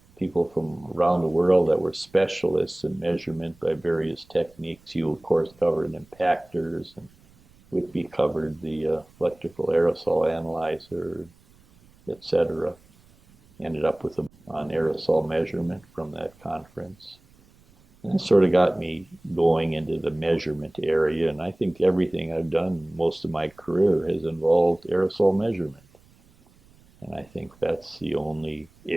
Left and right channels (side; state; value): right; noise; rumble, 29 dB below the sound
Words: people from around the world that were specialists in measurement by various techniques. You, of course, covered impactors, and Whitby covered the electrical aerosol analyzer, etc. Ended up with on aerosol measurement from that conference. And that sort of got me going into the measurement area, and I think everything I've done most of my career has involved aerosol measurement. And I think that's the only